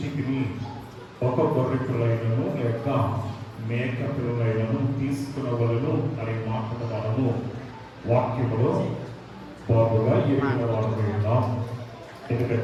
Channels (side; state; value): both; identical; correlation 1.00